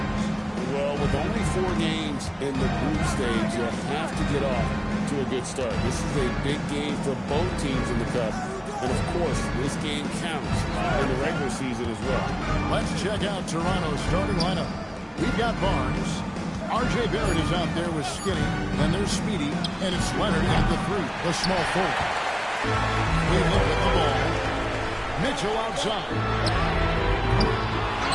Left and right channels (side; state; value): both; identical; correlation 1.00